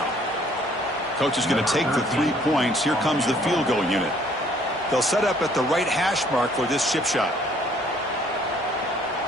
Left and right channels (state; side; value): normal; both; correlation 0.61